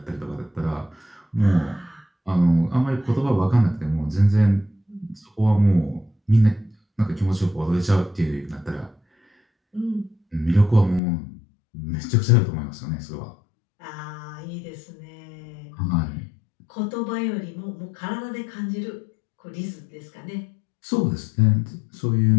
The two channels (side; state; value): right; drops out; at 11.0 s